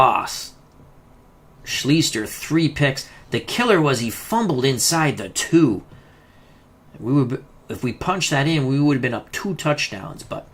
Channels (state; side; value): identical; both; correlation 1.00